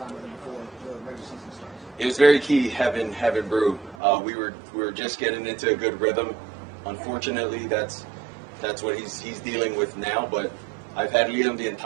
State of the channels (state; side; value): drops out; left; at 4.0 s